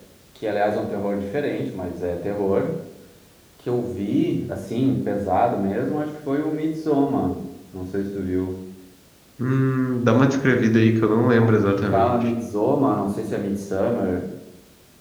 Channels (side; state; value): both; identical; correlation 1.00